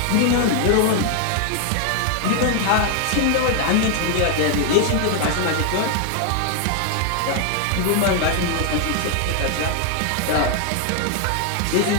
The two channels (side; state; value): both; different; correlation 0.00